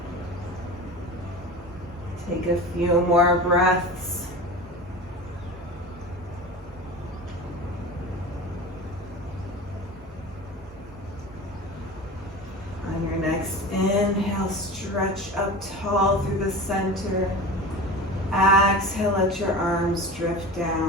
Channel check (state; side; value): normal; both; correlation 0.32